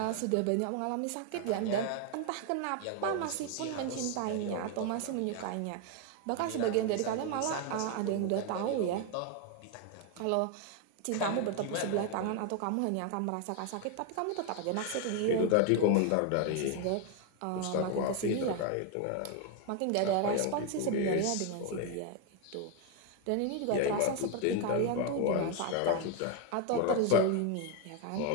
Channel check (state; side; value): different; both; correlation 0.01